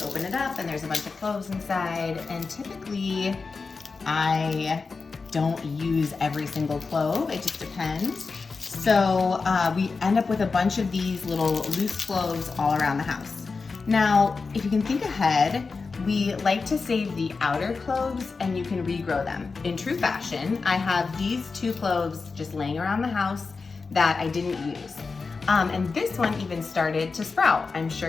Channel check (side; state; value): right; quieter; 4.5 dB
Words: open it up and there's a bunch of cloves inside, and typically I don't use every single clove, it just depends. So we end up with a bunch of these little loose cloves all around the house. Now, if you can think ahead, we like to save the outer cloves and you can regrow them. In true fashion, I have these 2 cloves just laying around the house that I didn't use. And this one even started to sprout. I'm sure